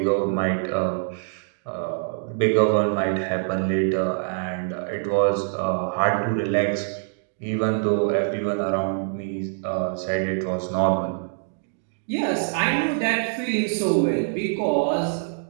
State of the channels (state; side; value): silent; left; digital silence